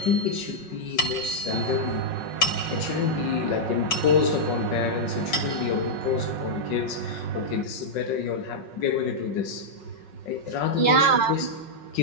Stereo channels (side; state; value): right; late; 5.4 ms